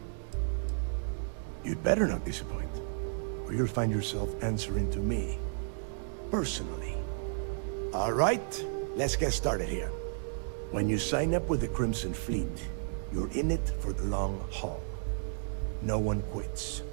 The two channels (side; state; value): left; silent; digital silence